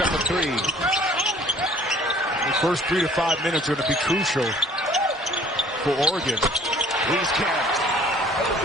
up a three. The first 3 to 5 minutes are going to be crucial for Oregon. Wieskamp.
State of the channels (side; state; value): both; normal; correlation 0.53